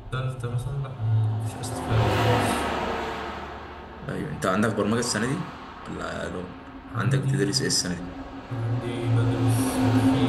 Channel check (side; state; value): both; identical; correlation 1.00